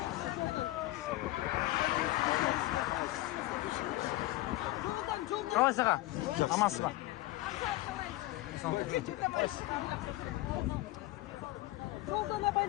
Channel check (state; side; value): quieter; right; 18.1 dB